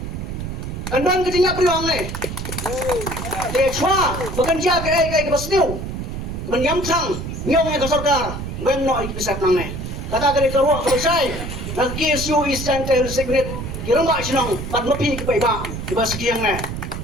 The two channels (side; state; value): right; noise; rumble, 6 dB below the sound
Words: de chwa bukan dia kai basniu menyam sang nyong ka Sorkar ngem no ikisat nang ne kata kali kerwa selesai nak KSU Eastern Tail Secret kirang ba sinong pat mapi ki paiba di ba sekiang ne